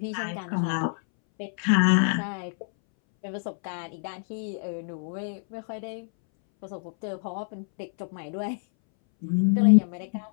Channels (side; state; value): right; silent; 60 dB below the other